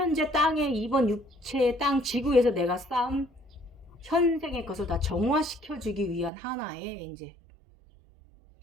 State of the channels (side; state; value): left; drops out; at 6.3 s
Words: 땅에 이번 육체의 땅 지구에서 내가 쌓은 현생의 것을 다 정화시켜주기 위한 하나의 이제